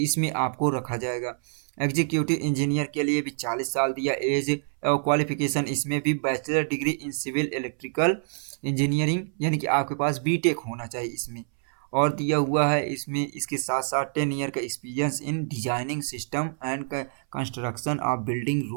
आपको रखा जाएगा। एग्जीक्यूटिव इंजीनियर के लिए भी 40 साल दिया एज। और क्वालिफिकेशन इसमें भी bachelor degree in civil electrical engineering यानी कि आपके पास बीटेक होना चाहिए इसमें। और दिया हुआ है इसमें इसके साथ साथ 10 ईयर का experience in designing system and construction of building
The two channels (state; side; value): silent; left; 61 dB below the other